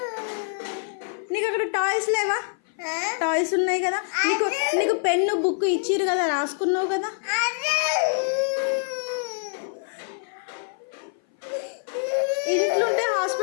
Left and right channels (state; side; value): silent; right; 57 dB below the other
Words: నీకు అక్కడ టాయ్స్ లేవా? టాయ్స్ ఉన్నాయి కదా. నీకు పెన్ను బుక్ ఇచ్చిరు కదా, రాసుకున్నావు కదా. ఇంట్లో ఉంటే